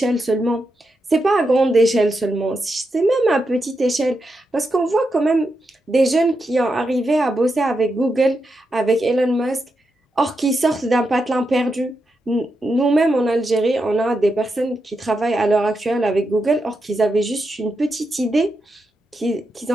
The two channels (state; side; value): normal; both; correlation 0.85